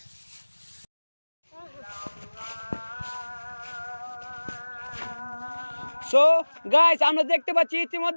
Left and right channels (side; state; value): both; inverted; correlation -1.00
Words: সো গাইস, আমরা দেখতে পাচ্ছি